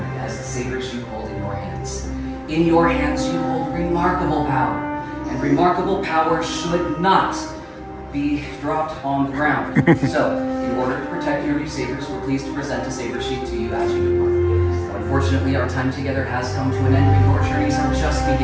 as the sabers you hold in your hands. In your hands, you hold remarkable power. And remarkable power should not be dropped on the ground. So, in order to protect your new sabers, we're pleased to present a saber sheet to you as you depart. Unfortunately, our time together has come to an end, and your journeys are just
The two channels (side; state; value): both; identical; correlation 1.00